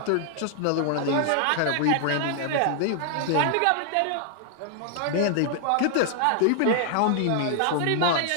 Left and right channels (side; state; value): both; different; correlation 0.00